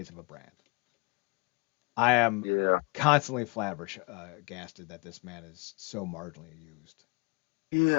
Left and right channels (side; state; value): right; quieter; 29.3 dB